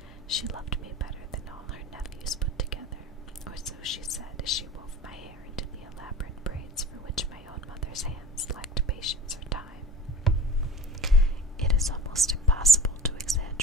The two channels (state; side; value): normal; both; correlation 0.40